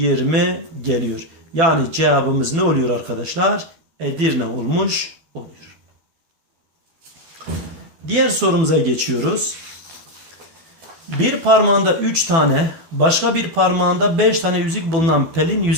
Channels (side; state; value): left; late; 12 ms